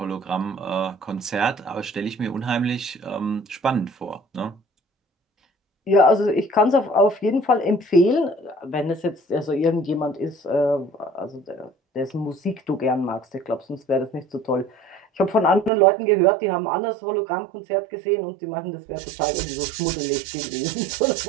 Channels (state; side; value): drops out; left; at 15.7 s